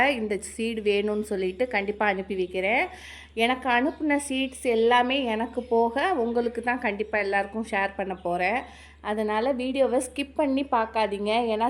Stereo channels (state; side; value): identical; both; correlation 1.00